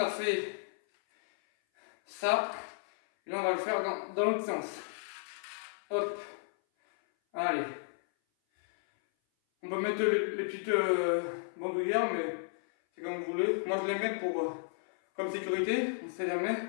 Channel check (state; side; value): silent; right; 56 dB below the other